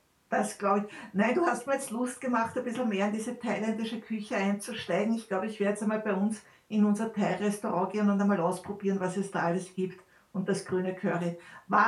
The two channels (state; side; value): identical; both; correlation 1.00